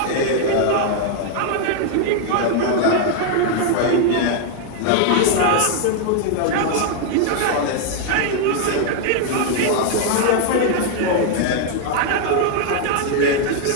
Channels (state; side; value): different; both; correlation 0.00